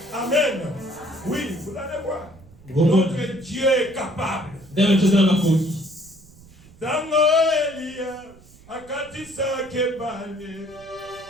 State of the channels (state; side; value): noise; right; rumble, 24 dB below the sound